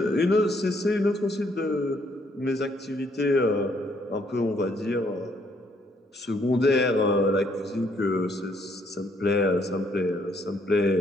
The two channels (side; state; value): both; normal; correlation 0.69